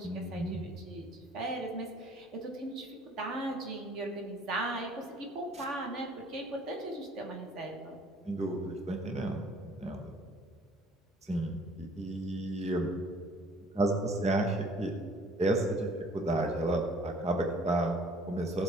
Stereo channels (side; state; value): both; normal; correlation 0.56